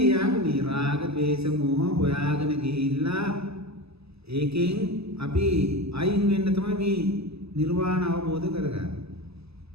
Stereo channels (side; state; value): left; late; 0.78 ms